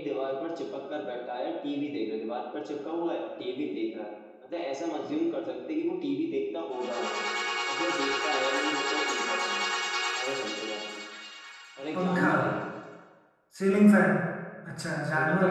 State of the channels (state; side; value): identical; both; correlation 1.00